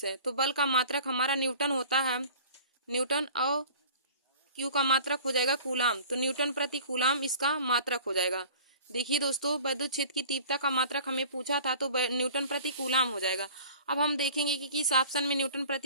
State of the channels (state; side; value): inverted; both; correlation -0.44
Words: है, तो बल का मात्रक हमारा न्यूटन होता है, न्यूटन, और क्यू का मात्रक हो जाएगा कूलाम। तो न्यूटन प्रति कूलाम इसका मात्रक हो जाएगा। देखिए दोस्तों वैद्युत क्षेत्र की तीव्रता का मात्रक हमें पूछा था तो न्यूटन प्रति कूलाम हो जाएगा। अब हम देखेंगे कि किस ऑप्शन में न्यूटन